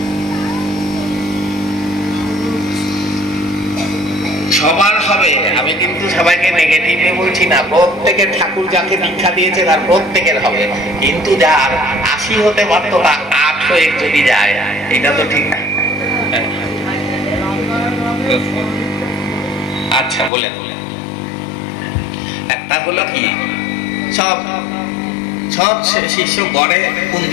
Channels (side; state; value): right; drops out; at 20.3 s